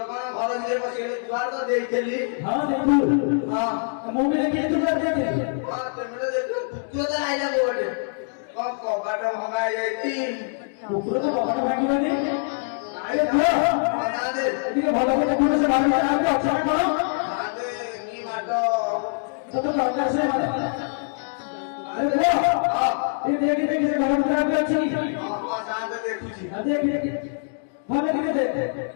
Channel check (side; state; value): right; silent; digital silence